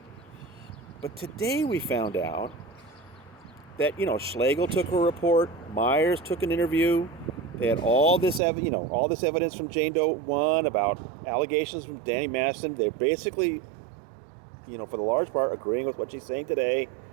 But today we found out that, Schlegel took a report, Myers took an interview. They had all this evidence from Jane Doe 1 about allegations from Danny Masterson. They're basically, for the large part, agreeing with what she's saying today.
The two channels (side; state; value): left; drops out; at 8.4 s